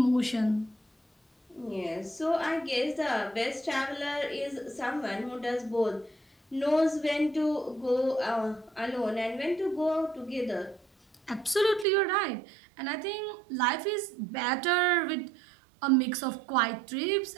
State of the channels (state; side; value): drops out; left; at 11.9 s